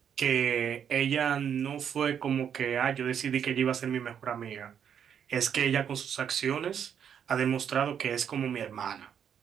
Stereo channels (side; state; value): left; quieter; 8.3 dB